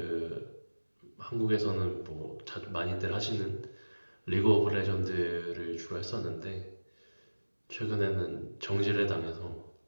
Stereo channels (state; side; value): inverted; both; correlation -1.00